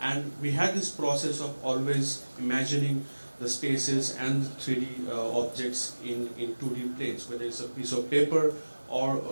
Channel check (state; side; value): inverted; both; correlation -1.00